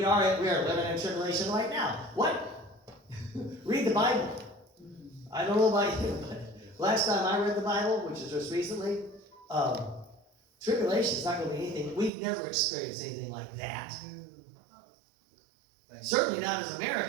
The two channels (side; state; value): left; drops out; at 12.1 s